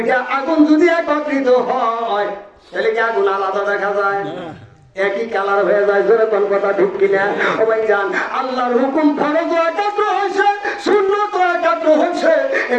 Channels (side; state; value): both; identical; correlation 1.00